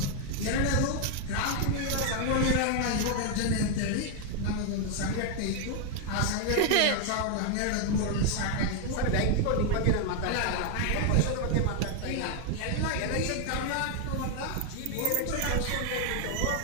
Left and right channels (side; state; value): both; different; correlation 0.00